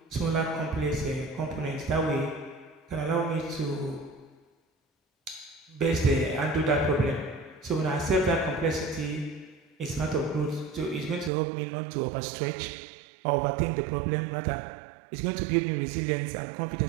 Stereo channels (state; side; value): drops out; left; at 11.3 s